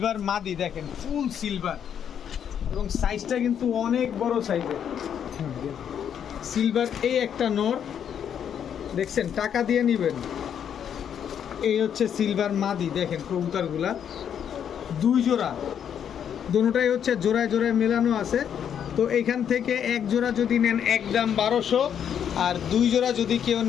মাদি। দেখেন ফুল সিলভার এবং সাইজটা কিন্তু অনেক বড় সাইজের। সিলভার এই একটা নর দেখছেন, টাকা দিয়ে নেবেন। এই হচ্ছে সিলভার মাদি। দেখেন কবুতরগুলা দুই জোড়া, দুটোটাই হচ্ছে জোড়ায় জোড়ায় মেলানো আছে। তো এইখান থেকে এক জোড়া যদি নেন একদম 1200, আর দুই জোড়া যদি কেউ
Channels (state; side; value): quieter; right; 8.7 dB